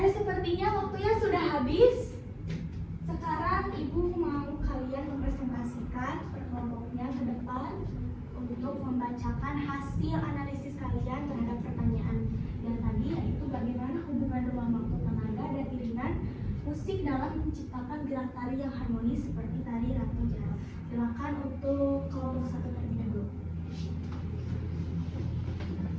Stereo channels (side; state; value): both; identical; correlation 1.00